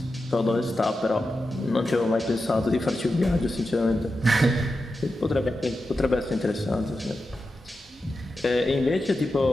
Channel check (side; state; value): both; normal; correlation 0.90